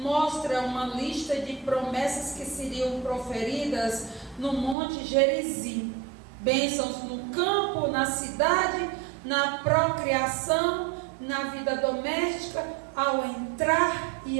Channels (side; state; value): left; drops out; at 4.8 s